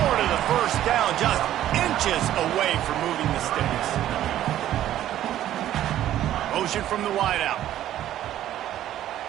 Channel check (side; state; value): left; quieter; 12.4 dB